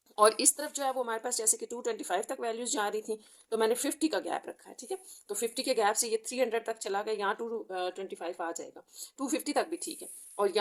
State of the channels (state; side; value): identical; both; correlation 1.00